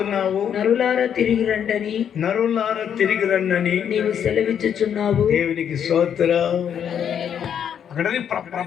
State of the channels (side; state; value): right; quieter; 8.6 dB